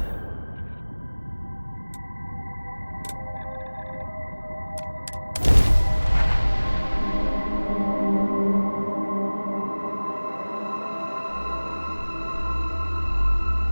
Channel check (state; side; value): inverted; both; correlation -1.00